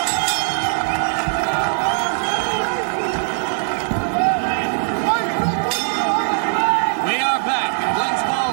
We are back in Glens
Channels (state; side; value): silent; left; digital silence